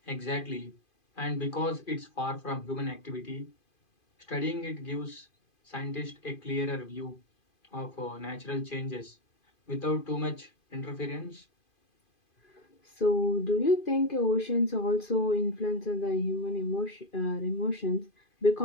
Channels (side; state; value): right; late; 2.5 ms